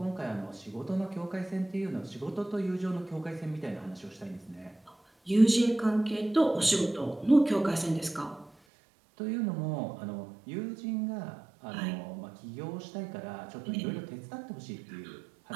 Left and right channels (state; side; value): drops out; left; at 8.5 s